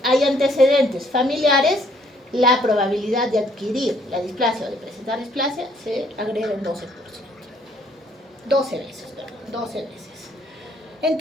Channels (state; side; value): normal; both; correlation 0.65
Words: hay antecedentes familiares, la probabilidad de adquirir la displasia o de presentar displasia se agrega en 12%. 12 veces, perdón, 12 veces.